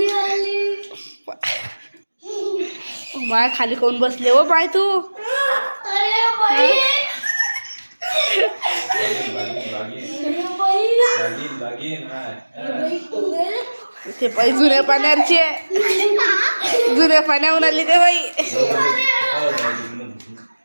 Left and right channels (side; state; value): both; inverted; correlation -1.00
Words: आली. माय खाली कोण बसले हो बाय तू? अरे बाई ते पाय जुन्या पाण्यावरचे, जुन्या पाण्यावर आली ते बाई.